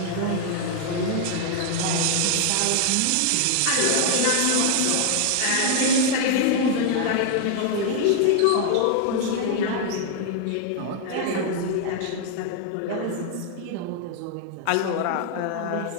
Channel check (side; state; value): both; different; correlation 0.00